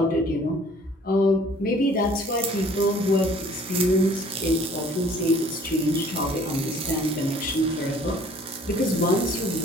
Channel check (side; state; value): both; normal; correlation 0.55